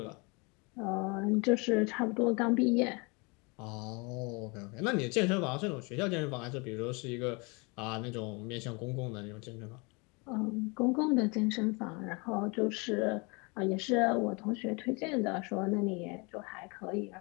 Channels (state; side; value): quieter; right; 29.7 dB